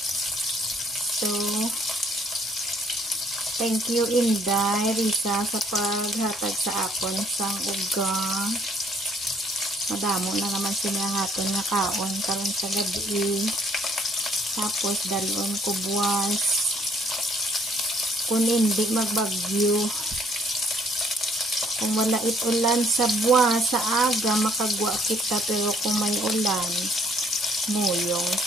So, thank you Inday, Risa, sa paghatag sa akon sang ugang. Madamo na naman sinahaton nga kaon karon sa gabi. Tapos dalon ko buwas. Kung hindi magbagyo, kung wala ulan sa buwas sa aga, makagwa kita. Pero kung may ulan, muyong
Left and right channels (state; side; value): normal; both; correlation 0.63